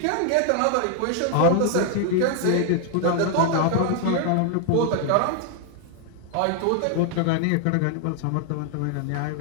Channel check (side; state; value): both; different; correlation 0.00